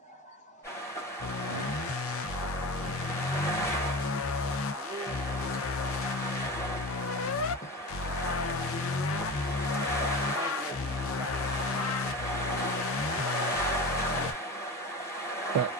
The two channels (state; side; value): normal; both; correlation 0.30